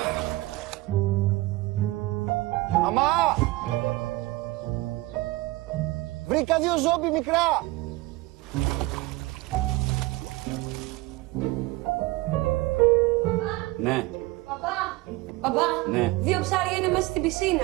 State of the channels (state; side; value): quieter; left; 20.0 dB